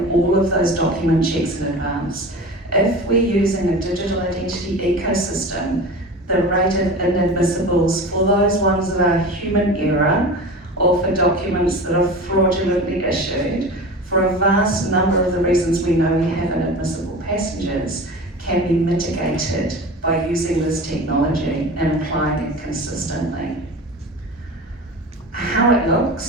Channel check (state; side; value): normal; both; correlation 0.33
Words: all of those document checks in advance. If we're using a digital identity ecosystem, the rate of inadmissibles for those ones that are human error or for documents that are fraudulently issued, for a vast number of the reasons we know we have inadmissible passengers, can be mitigated by using this technology and applying it consistently. How it